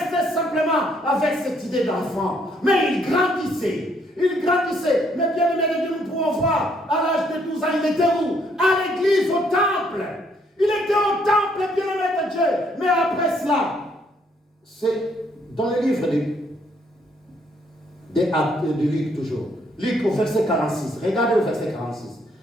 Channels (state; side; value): normal; both; correlation 0.69